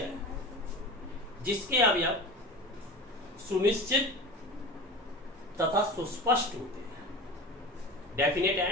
जिसके अवयव सुनिश्चित तथा सुस्पष्ट होते हैं, डेफिनेट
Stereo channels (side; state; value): both; normal; correlation 0.32